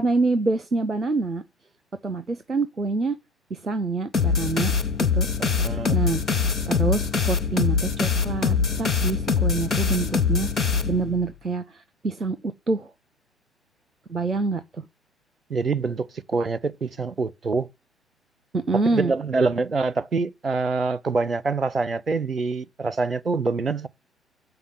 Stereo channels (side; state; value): both; normal; correlation 0.46